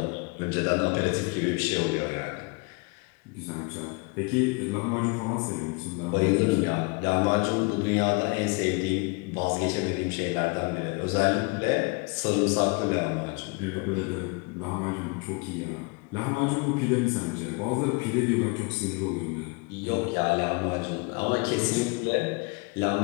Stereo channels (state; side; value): quieter; right; 29.5 dB